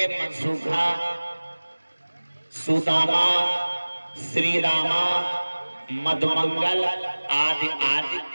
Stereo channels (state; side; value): inverted; both; correlation -1.00